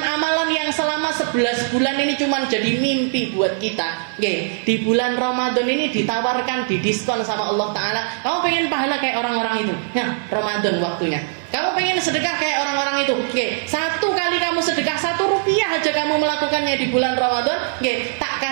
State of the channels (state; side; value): silent; left; 65 dB below the other